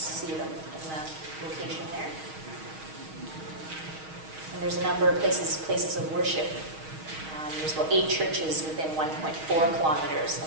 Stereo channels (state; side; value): late; left; 6.4 ms